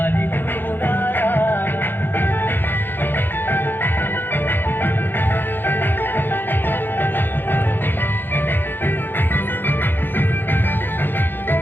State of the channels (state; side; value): late; right; 0.097 ms